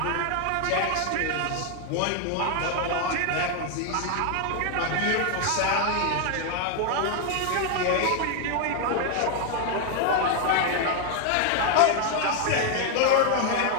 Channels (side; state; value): both; different; correlation 0.00